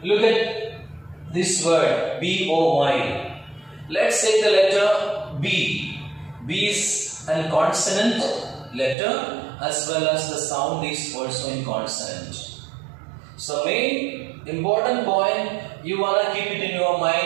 Look at this word B-O-Y. Let's say the letter B. B is a consonant letter as well as the sound is also in consonant. So main important point you wanna keep it in your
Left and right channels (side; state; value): left; drops out; at 9.0 s